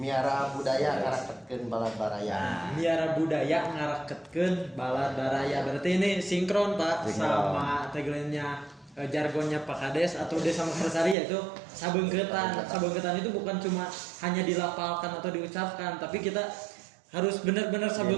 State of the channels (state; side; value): drops out; left; at 11.2 s